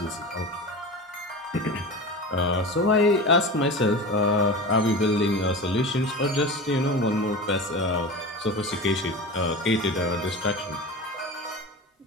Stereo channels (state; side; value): normal; both; correlation 0.30